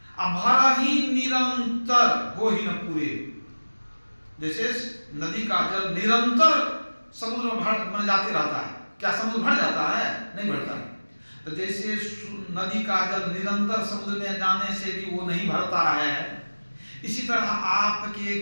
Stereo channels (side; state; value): both; inverted; correlation -1.00